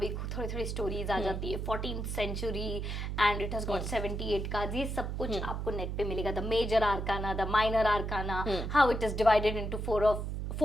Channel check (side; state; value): right; noise; hum, 3 dB below the sound